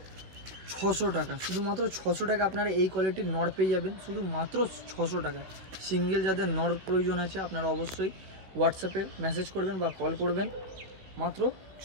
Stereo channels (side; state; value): left; late; 16 ms